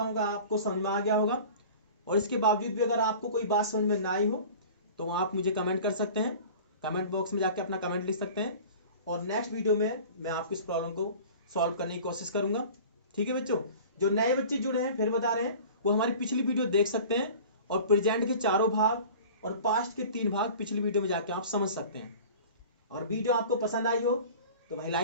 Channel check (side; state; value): both; inverted; correlation -0.41